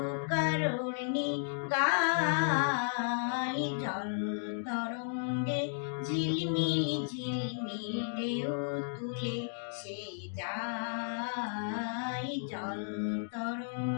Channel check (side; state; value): right; silent; digital silence